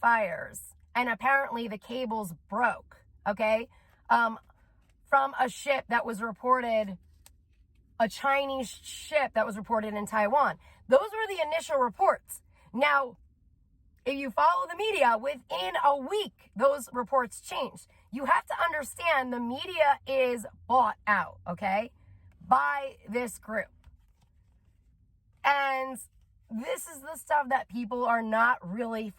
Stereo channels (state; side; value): identical; both; correlation 1.00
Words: And apparently the cables broke. Okay? From a ship that was reported, a Chinese ship that was reported in Taiwan. Those were the initial reports. Now, if you follow the media, within a week, those reports changed. You have to understand the media is bought out, okay, by this group. And this is the stuff that people are not really